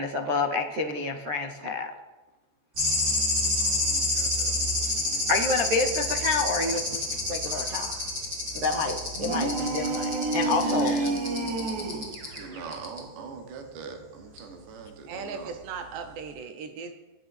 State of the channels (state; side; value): late; left; 14 ms